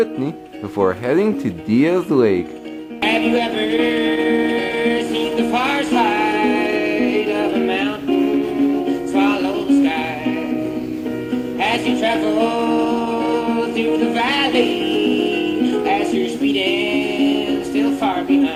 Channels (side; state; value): both; identical; correlation 1.00